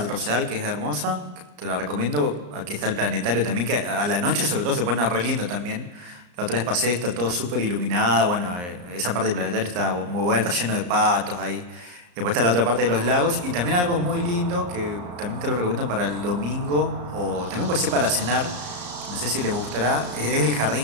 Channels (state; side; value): late; left; 34 ms